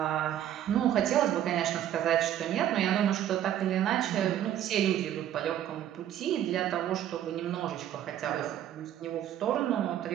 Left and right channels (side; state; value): left; quieter; 11.2 dB